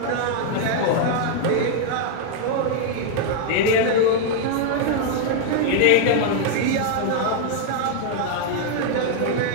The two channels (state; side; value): different; both; correlation 0.00